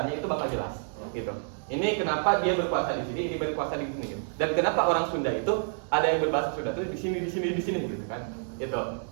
itu bakal jelas gitu. Ini kenapa dia berkuasa di sini, ini berkuasa di sini gitu. Dan kenapa orang Sunda itu ada yang berbahasa Sunda itu di sini gitu kan. Itu.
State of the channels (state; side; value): silent; left; 59 dB below the other